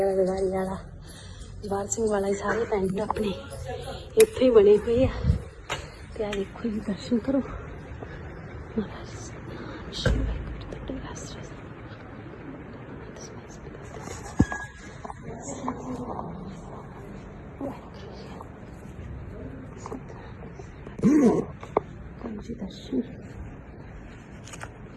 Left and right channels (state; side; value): identical; both; correlation 1.00